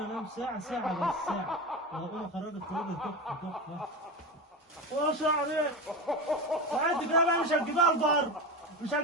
انام ساعة بس ساعة. وهقوم اخرجك خروجة تحفة. ما شاء عليك. وانت كده بقى مش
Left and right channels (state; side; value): normal; both; correlation 0.21